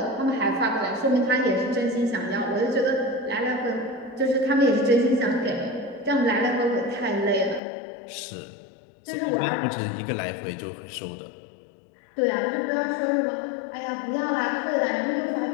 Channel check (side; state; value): right; drops out; at 7.6 s